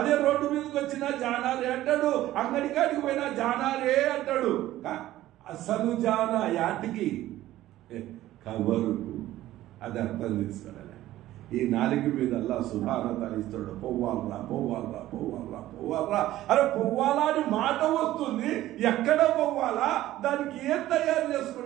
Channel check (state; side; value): quieter; left; 14.7 dB